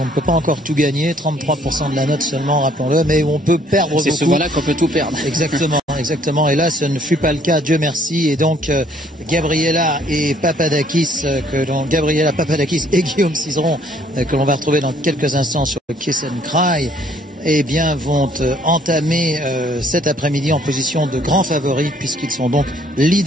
ne peut pas encore tout gagner, 33% de la note seulement, rappelons-le, mais où on peut perdre beaucoup. C'est souvent-là qu'on peut tout perdre. Exactement, exactement. Et là, ce ne fut pas le cas, Dieu merci. Et donc, Gabriela Papadakis et Guillaume Cizeron, que l'on va retrouver dans quelques instants sur le Kiss and Cry, eh bien, vont entamer cet après-midi en position de grands favoris, puisqu'ils sont donc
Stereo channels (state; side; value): normal; both; correlation 0.62